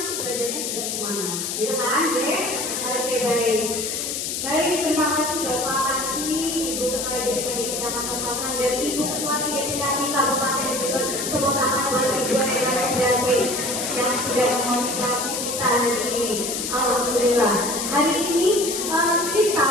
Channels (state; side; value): noise; left; hiss, 3 dB below the sound